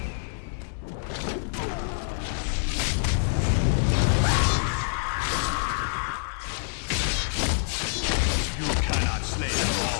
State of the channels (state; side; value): silent; right; digital silence